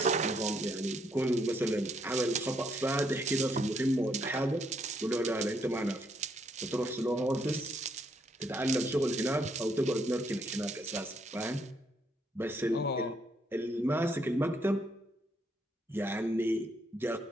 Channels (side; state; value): both; normal; correlation 0.72